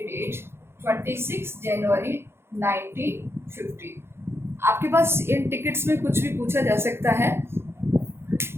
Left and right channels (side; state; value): left; late; 0.12 ms